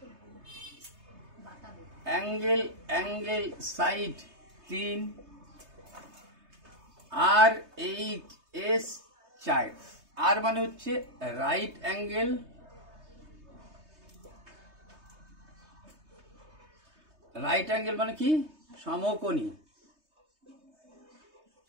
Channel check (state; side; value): late; left; 3.2 ms